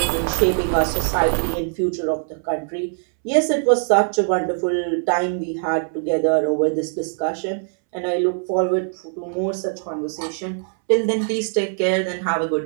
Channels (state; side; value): silent; left; 64 dB below the other